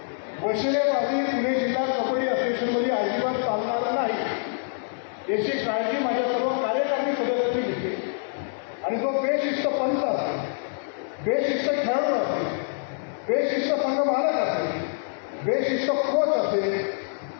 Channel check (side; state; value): right; silent; digital silence